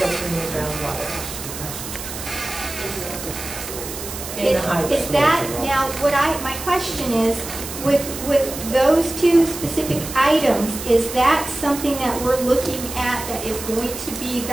the groundwater. In the high. is that, now, my question is, with those two specific items, is that something that we're looking at that is going to be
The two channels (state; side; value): noise; right; hiss, 9 dB below the sound